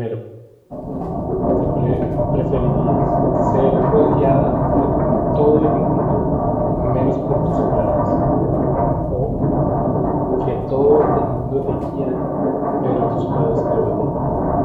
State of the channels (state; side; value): identical; both; correlation 1.00